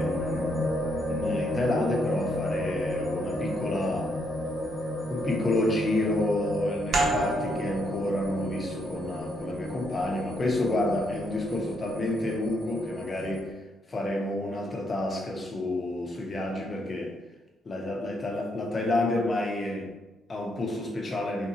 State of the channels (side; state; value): both; normal; correlation 0.75